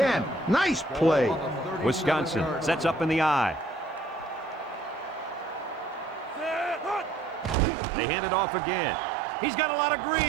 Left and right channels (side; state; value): left; drops out; at 7.6 s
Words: Nice play. Wisconsin sets up in the I. They hand it off again. He's got a lot of